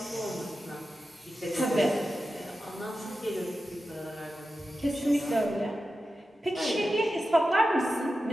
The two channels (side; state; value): both; normal; correlation 0.92